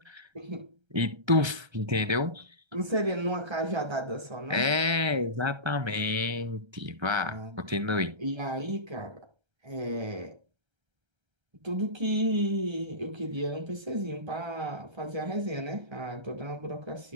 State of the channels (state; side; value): late; left; 1.3 ms